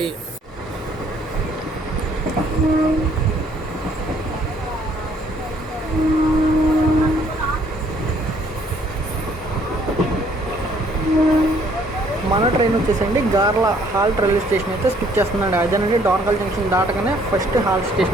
మన ట్రైన్ వచ్చేసండి గార్ల హాల్ట్ రైల్వే స్టేషన్ అయితే స్కిప్ చేస్తుందండి. అదేనండి డోర్నకల్ జంక్షన్ దాటగానే ఫస్ట్ హాల్ట్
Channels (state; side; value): normal; both; correlation 0.63